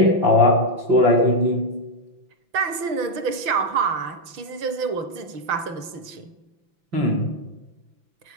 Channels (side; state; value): left; late; 6.0 ms